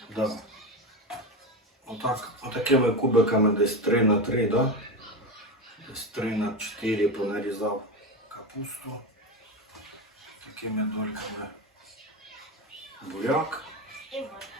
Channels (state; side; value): normal; both; correlation 0.18